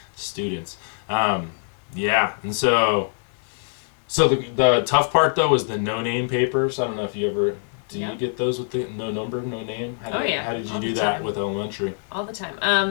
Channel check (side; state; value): right; silent; digital silence